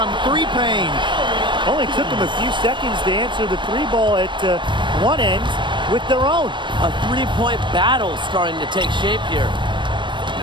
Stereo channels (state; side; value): late; left; 0.23 ms